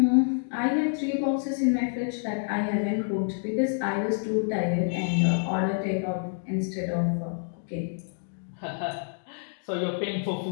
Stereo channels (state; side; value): silent; right; digital silence